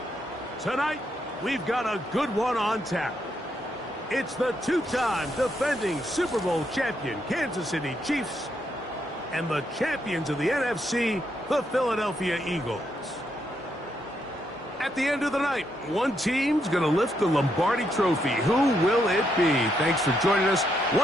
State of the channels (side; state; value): both; normal; correlation 0.78